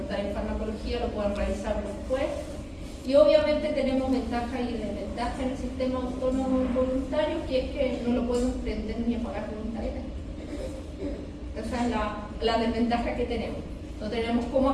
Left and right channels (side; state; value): both; identical; correlation 1.00